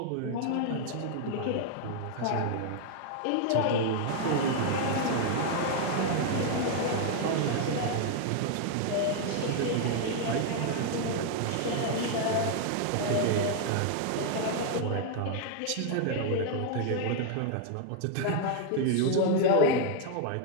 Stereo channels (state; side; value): different; both; correlation 0.00